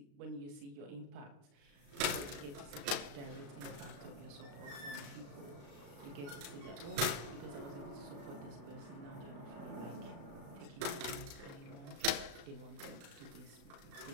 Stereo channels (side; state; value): left; late; 35 ms